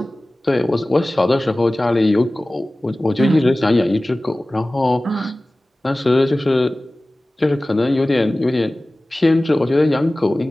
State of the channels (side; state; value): both; normal; correlation 0.98